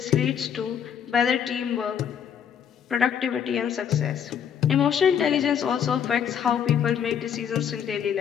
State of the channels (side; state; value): right; quieter; 8.3 dB